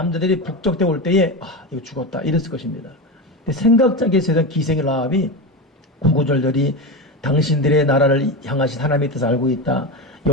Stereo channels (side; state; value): both; normal; correlation 0.19